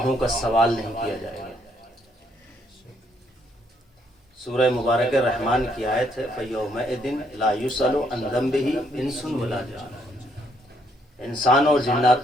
کا سوال نہیں کیا جائے گا. سورہ مبارک الرحمن کی آیت ہے فَيَوْمَئِذٍ لَا يُسْأَلُ عَنْ ذَنبِهِ إِنسٌ وَلَا جَانٌ. انسان اور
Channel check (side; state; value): both; normal; correlation 0.70